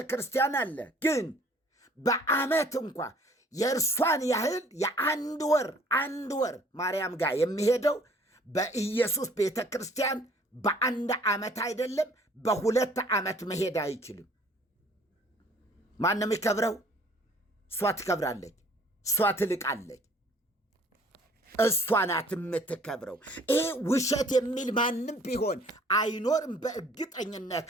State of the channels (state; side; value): normal; both; correlation 0.56